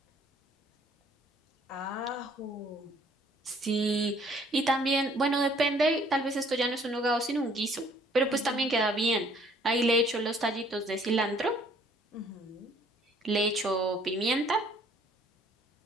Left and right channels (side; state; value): both; normal; correlation 0.60